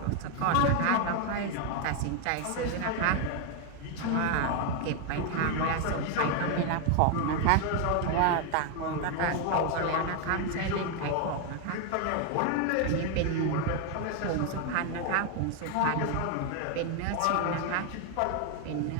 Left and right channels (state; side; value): different; both; correlation 0.01